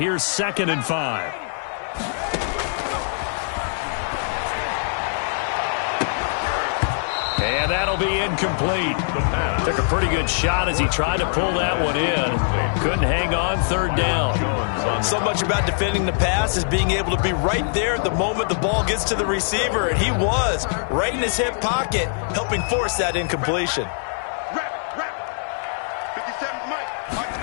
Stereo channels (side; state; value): right; silent; 64 dB below the other